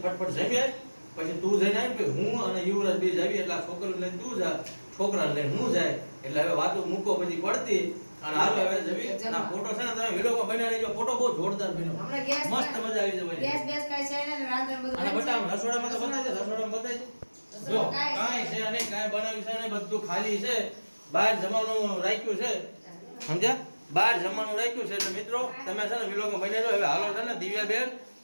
ફટફટ જમી આય. પછી તું જઈને આવી કે હું અને યુવરાજ બે જાવી. એટલે આ છોકરાને લઈને તું જા, છોકરાને લઈને હું જાય. એટલે હવે વાતો મૂકો બધી પડતી અને હાલો હવે જમી. અને આ ફોટો છે ને તમે વિલોગમાં બનાવી લેજો. ફોટો બહુ જોરદાર બન્યો. હમણાં ગેસ મસ્ત મજા આવી જવાની. ગેસ બેસ કાઈ છે ને રાંધણ બધું અને બંધ છે? બટા રસોડામાં તો બતાવી દે. રસોડામાં બતાવી દે. જો કાંઈ છે નહીં, કાંઈ બનાવ્યું છે નહીં, બધું ખાલી છે. બહાર જમવાનું રાખ્યું છે સમજ્યા. બહાર જમવાનું રાખ્યું છે. એટલે મિત્રો તમે છે ને વિલોગમાં બની જાઓ. હવે હાલો છે ને દિવ્યાબેન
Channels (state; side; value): inverted; both; correlation -1.00